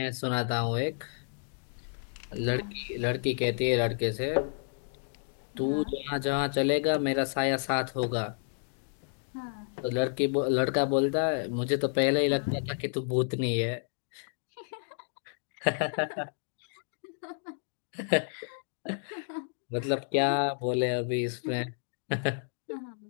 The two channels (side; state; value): right; silent; digital silence